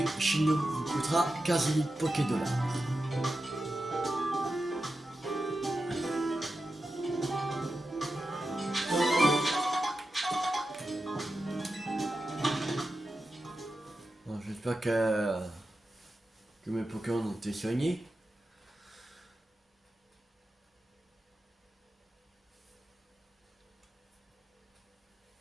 chez nous vous coûtera 15 000 Poké-dollars. J'espère que mes Pokémon ont été soignés.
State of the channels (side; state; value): both; normal; correlation 0.91